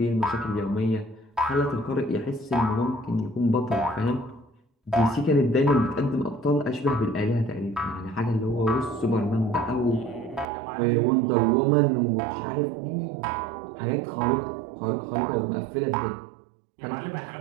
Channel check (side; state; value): left; drops out; at 10.5 s